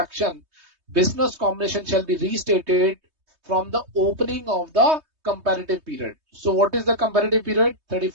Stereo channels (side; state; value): left; late; 3.2 ms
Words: business combination shall be restated from the opening of the comparative period. So what is the comparative period?